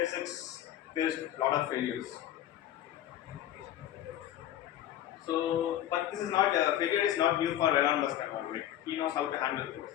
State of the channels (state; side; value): quieter; right; 12.1 dB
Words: faced a lot of failures. So, but this is not failure is not new for Elon Musk at all. Like, he knows how to handle